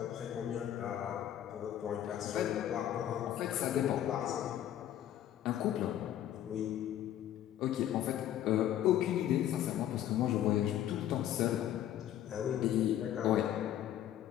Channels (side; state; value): right; quieter; 11.6 dB